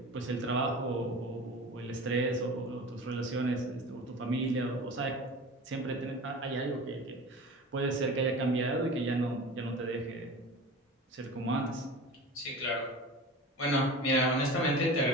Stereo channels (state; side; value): normal; both; correlation 0.34